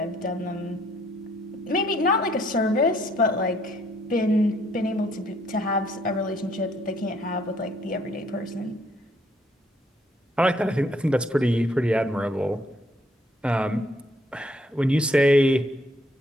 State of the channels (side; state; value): both; normal; correlation 0.66